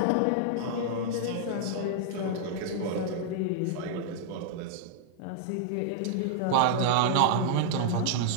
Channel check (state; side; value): different; both; correlation -0.01